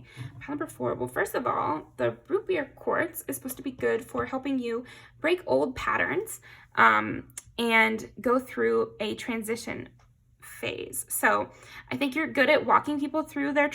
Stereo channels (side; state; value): both; identical; correlation 1.00